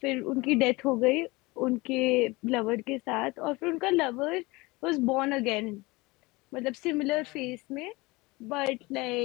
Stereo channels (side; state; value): right; quieter; 23.2 dB